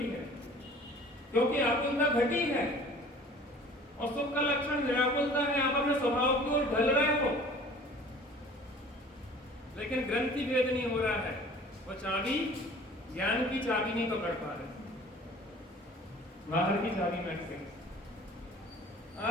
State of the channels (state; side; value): normal; both; correlation 0.48